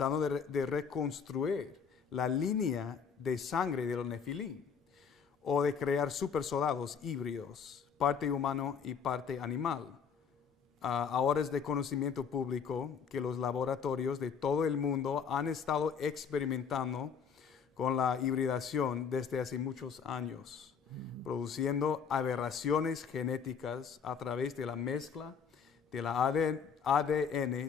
de reconstruir la línea de sangre de los Nefilim, o de crear supersoldados híbridos, parte humano y parte animal? Ahora es de conocimiento público que los laboratorios de todo el mundo han estado experimentando con la hibridación desde hace muchos años, produciendo aberraciones genéticas a través de la mezcla de la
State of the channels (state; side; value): quieter; right; 6.6 dB